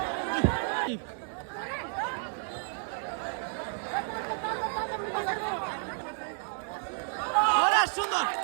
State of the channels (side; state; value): left; silent; 57 dB below the other